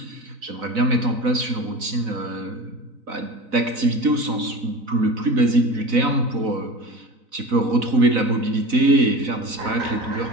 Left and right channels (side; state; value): left; late; 4.0 ms